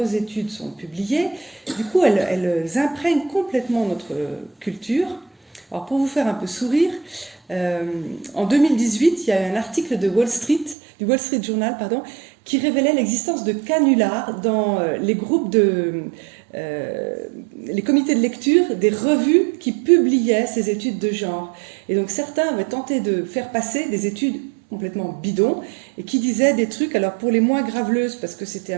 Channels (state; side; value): drops out; left; at 10.8 s